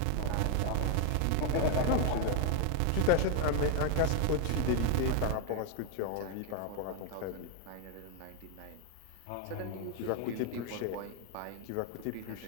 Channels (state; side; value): different; both; correlation 0.01